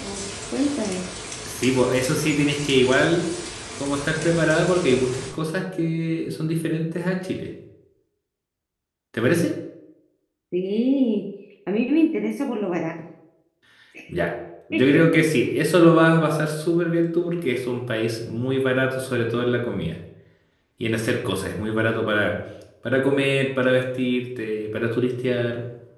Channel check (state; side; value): identical; both; correlation 1.00